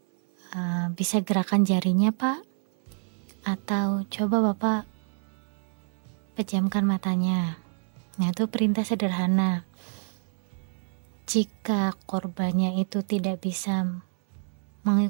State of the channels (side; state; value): left; silent; 60 dB below the other